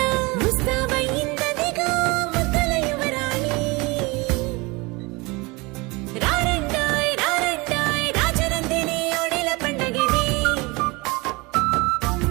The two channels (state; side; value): quieter; left; 25.3 dB